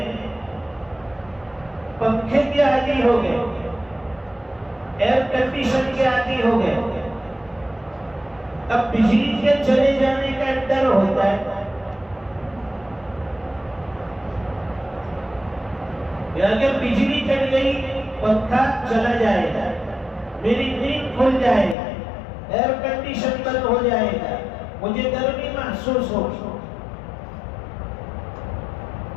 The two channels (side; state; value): right; drops out; at 21.8 s